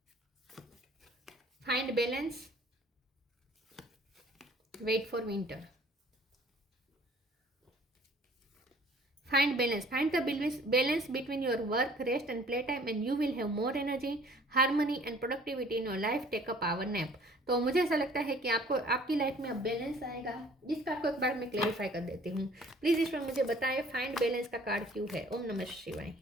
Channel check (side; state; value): both; normal; correlation 0.54